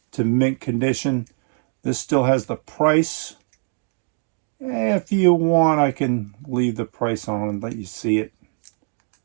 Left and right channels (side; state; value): left; quieter; 37.0 dB